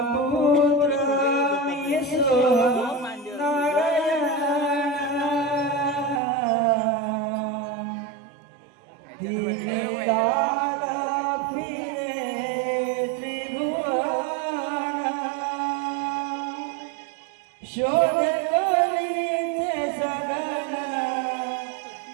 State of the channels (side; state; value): left; drops out; at 6.2 s